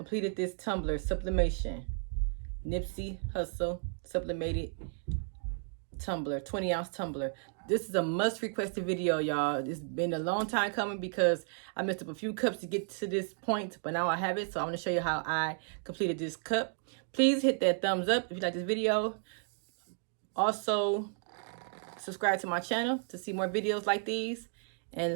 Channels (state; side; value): silent; left; 56 dB below the other